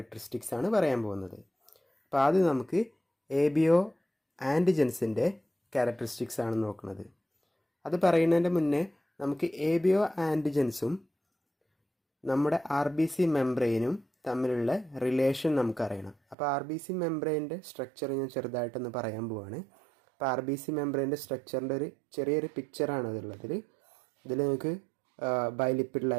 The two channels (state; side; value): drops out; left; at 16.4 s